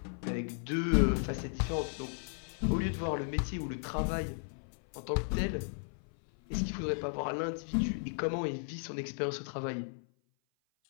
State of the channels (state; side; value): silent; right; 54 dB below the other